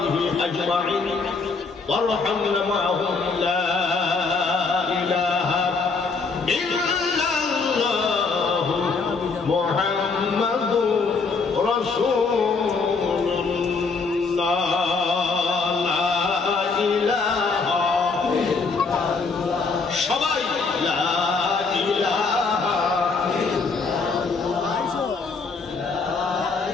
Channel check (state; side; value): quieter; right; 4.4 dB